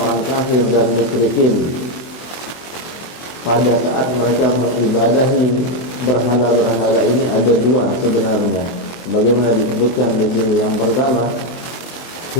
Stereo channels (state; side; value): late; right; 23 ms